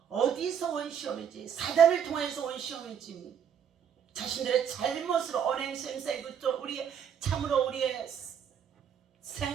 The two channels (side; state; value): left; quieter; 8.1 dB